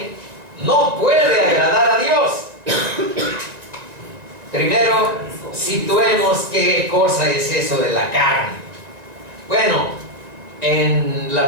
no puede agradar a Dios? Primero, situemos qué cosa es eso de la carne. Bueno, en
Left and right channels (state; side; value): late; left; 1.9 ms